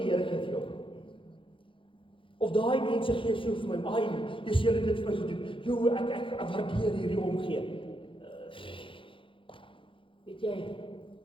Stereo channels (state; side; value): late; right; 0.25 ms